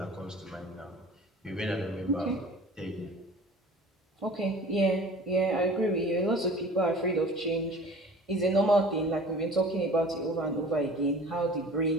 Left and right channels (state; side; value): normal; both; correlation 0.44